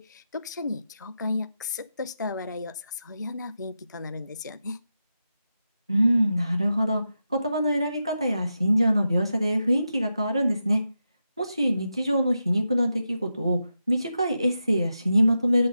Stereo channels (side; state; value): both; inverted; correlation -0.88